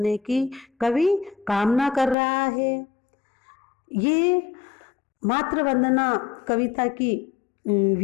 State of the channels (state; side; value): drops out; right; at 2.1 s